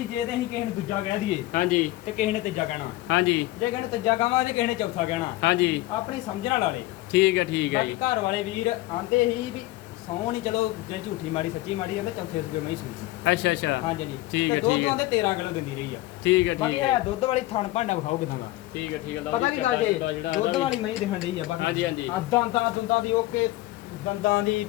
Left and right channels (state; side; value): quieter; right; 17.7 dB